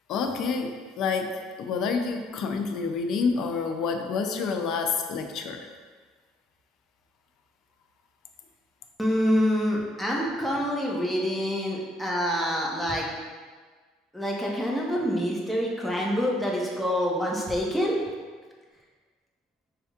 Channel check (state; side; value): normal; both; correlation 0.69